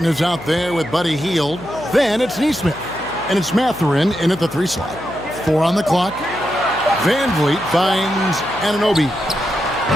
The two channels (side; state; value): left; noise; hum, 17 dB below the sound